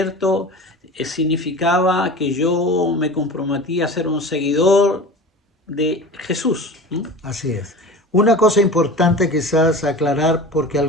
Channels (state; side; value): normal; both; correlation 0.35